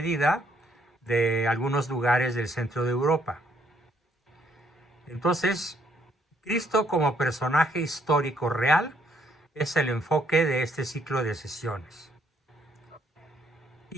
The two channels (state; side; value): normal; both; correlation 0.69